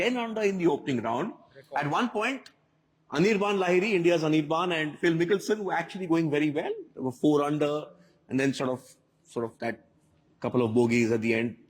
under in the opening round. At one point, Anirban Lahiri, India's Anirban, and Phil Mickelson were actually going very well. They were 4 under, and then sort of that couple of bogeys at the end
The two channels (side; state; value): both; identical; correlation 1.00